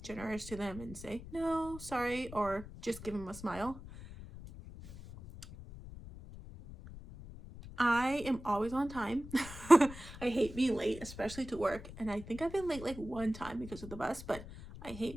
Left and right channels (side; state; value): left; noise; rumble, 14 dB below the sound